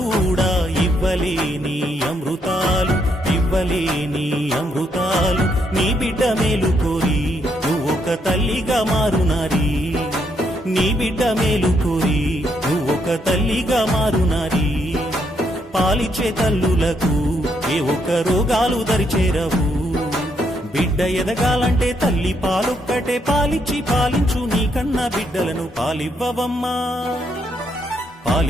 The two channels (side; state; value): both; normal; correlation 0.75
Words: ఇవ్వలేని అమృతాలు ఇవ్వలేని అమృతాలు నీ బిడ్డ మేలు కోరి నువ్వొక తల్లిగా మారునారి నీ బిడ్డ మేలు కోరి నువ్వొక తల్లిగా మారునారి పాలిచ్చే తల్లులకు ఏ ఒక్క రోగాలు దరిచేరవు బిడ్డ ఎదగాలంటే తల్లి పాలొక్కటే పాలిచ్చి పాలించు నీ కన్న బిడ్డలను పాలివ్వవమ్మా